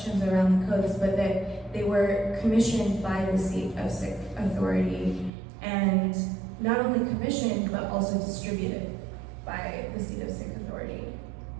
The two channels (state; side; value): drops out; left; at 5.3 s